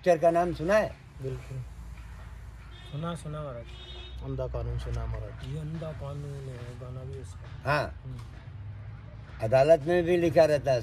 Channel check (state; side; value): identical; both; correlation 1.00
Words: का नाम सुना है? बिल्कुल सुना महाराज। अंधा कानून सुना महाराज। ये अंधा कानून है, गाना भी उसका। हाँ, अदालत में भी लिखा रहता है